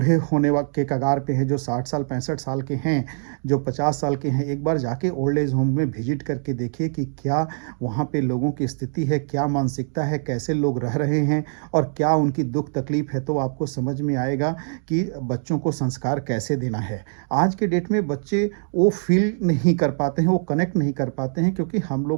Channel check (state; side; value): silent; left; digital silence